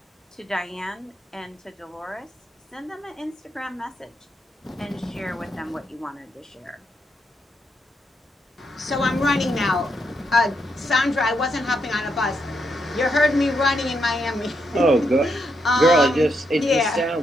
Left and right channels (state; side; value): normal; both; correlation 0.80